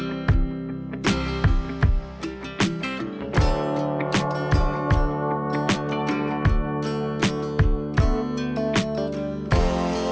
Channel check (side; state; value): both; identical; correlation 1.00